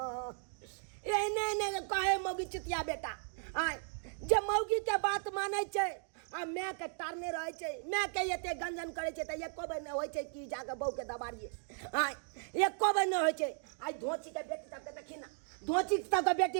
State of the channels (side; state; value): left; silent; 54 dB below the other